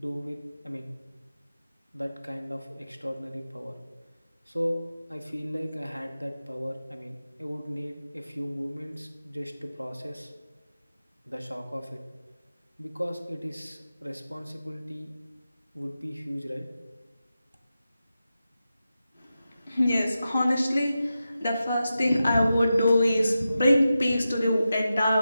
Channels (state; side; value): inverted; both; correlation -0.92